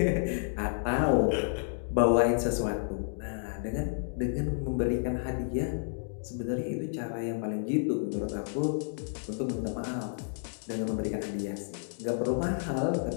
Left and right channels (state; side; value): silent; right; digital silence